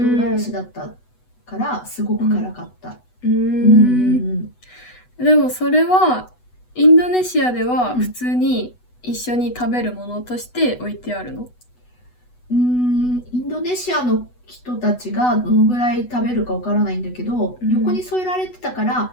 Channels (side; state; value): right; late; 8.1 ms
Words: だったからすごく辛かった。でもそれはインドネシアでは普通に一緒に食べるものとして置いてあるの？インドネシアの人たちがどのぐらい食べるかわからないんだけど、横に添えられてたか